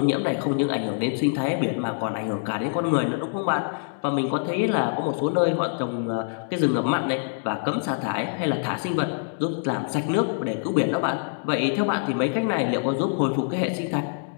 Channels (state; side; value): silent; right; 61 dB below the other